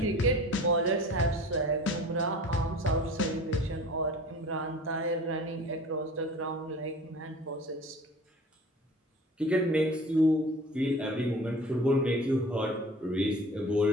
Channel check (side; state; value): both; normal; correlation 0.42